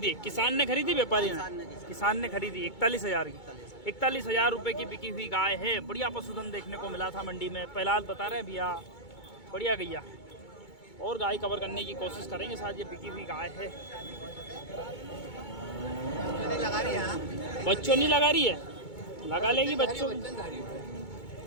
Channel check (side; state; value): right; late; 2.2 ms